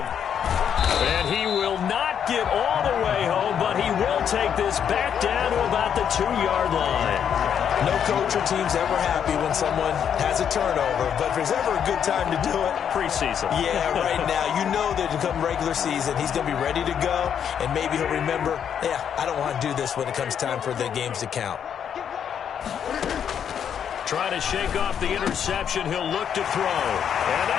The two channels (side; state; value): right; quieter; 8.4 dB